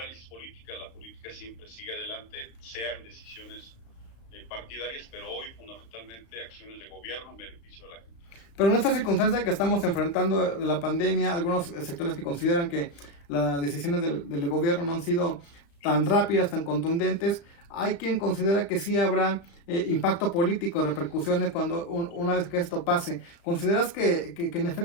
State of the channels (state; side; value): late; right; 35 ms